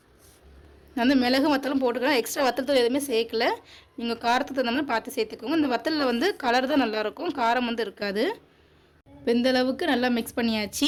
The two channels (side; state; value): both; identical; correlation 1.00